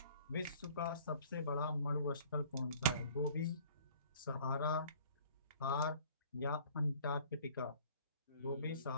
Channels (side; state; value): both; inverted; correlation -0.52